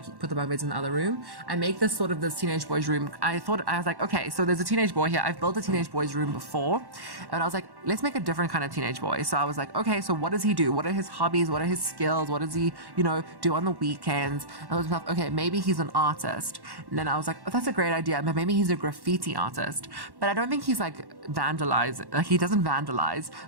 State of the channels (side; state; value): left; late; 1.1 ms